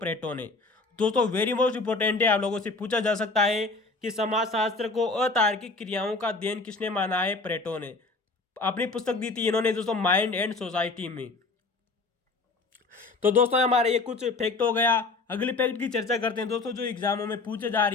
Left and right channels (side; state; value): right; quieter; 3.6 dB